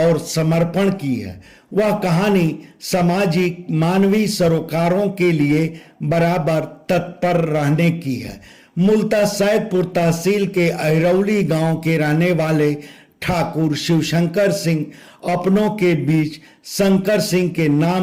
समर्पण की है। वह कहानी सामाजिक मानवीय सरोकारों के लिए बराबर तत्पर रहने की है। मूलतः सैदपुर तहसील के अहिरौली गांव के रहने वाले ठाकुर शिवशंकर सिंह अपनों के बीच शंकर सिंह के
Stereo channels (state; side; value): identical; both; correlation 1.00